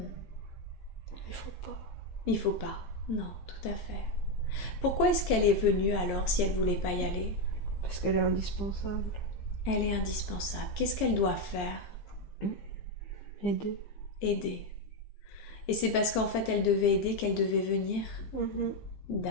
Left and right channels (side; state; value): right; late; 15 ms